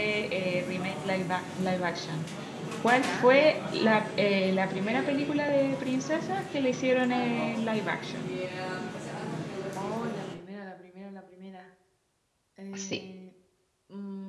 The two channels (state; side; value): identical; both; correlation 1.00